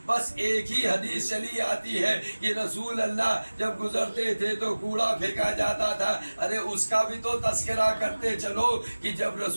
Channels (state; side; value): inverted; both; correlation -1.00